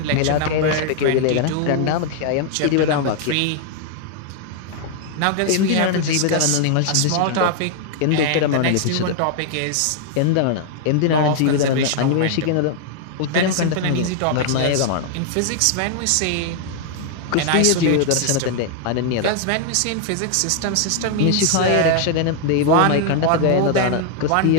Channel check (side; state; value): both; different; correlation 0.00